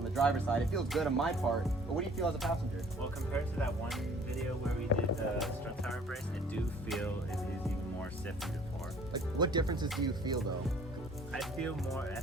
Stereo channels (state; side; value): normal; both; correlation 0.54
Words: the driver's side. It feels good on my part, but what do you feel as a passenger? well, compared to that one video where we did the strut tower brace, I do feel it is even more stiff than before. Like, what differences do you feel though? I feel